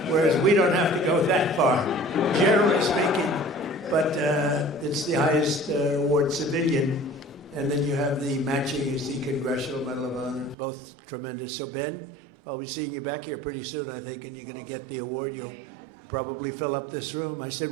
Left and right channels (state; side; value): drops out; left; at 10.6 s